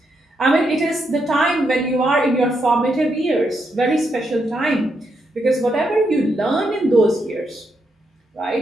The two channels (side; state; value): both; normal; correlation 0.80